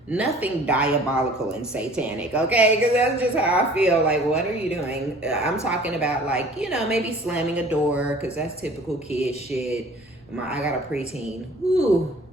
Nothing diabolical and satanic, okay? Because that's just how I feel. Like, what are you doing? I'm talking about, like, you know, maybe slamming a door, because that's typical kid shit. I got a preteen. Ooh,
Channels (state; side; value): normal; both; correlation 0.49